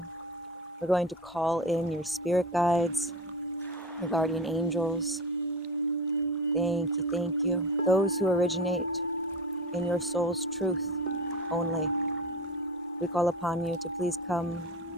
we're going to call in your spirit guides, your guardian angels. Thank you, thank you. Those who originate in your soul's truth only. We call upon you to please come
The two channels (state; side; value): normal; both; correlation 0.28